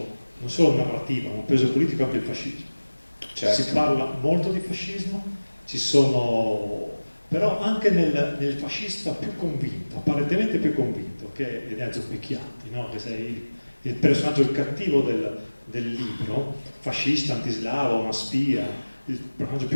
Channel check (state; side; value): inverted; both; correlation -1.00